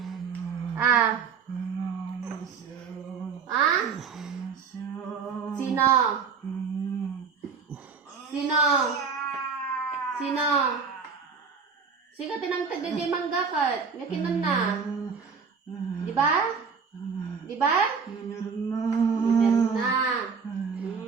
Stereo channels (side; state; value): left; quieter; 5.7 dB